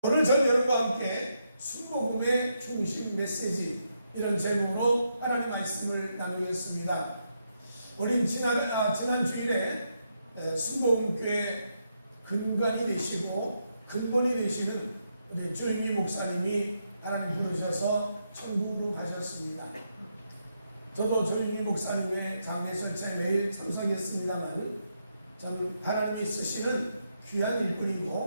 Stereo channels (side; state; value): both; inverted; correlation -0.80